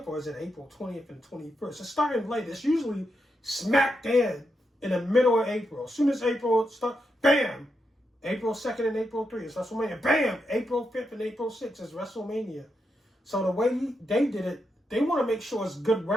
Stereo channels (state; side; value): normal; both; correlation 0.84